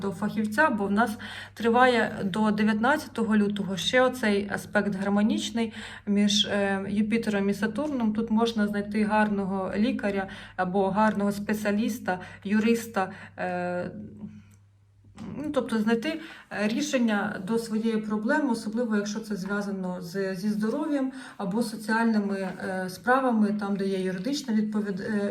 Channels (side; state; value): both; identical; correlation 1.00